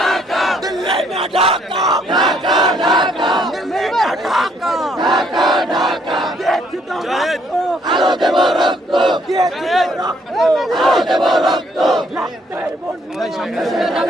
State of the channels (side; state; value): both; normal; correlation 0.67